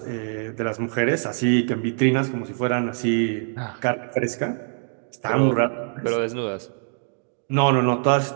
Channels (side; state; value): left; silent; digital silence